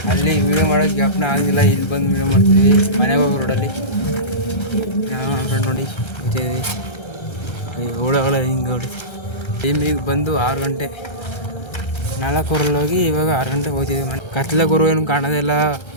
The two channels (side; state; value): right; late; 1.3 ms